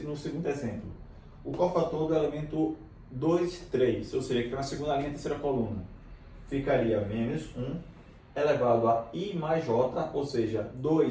exemplo. O cofator do elemento 2, 3, ou seja, que está na segunda linha, terceira coluna, ficaria menos 1 elevado a I mais J, ou seja,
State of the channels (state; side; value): identical; both; correlation 1.00